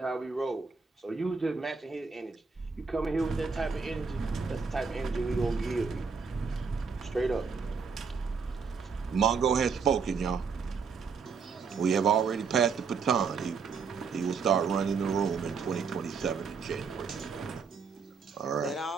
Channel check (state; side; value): quieter; left; 5.4 dB